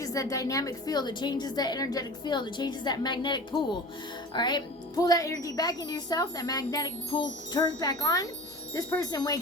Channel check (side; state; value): both; normal; correlation 0.36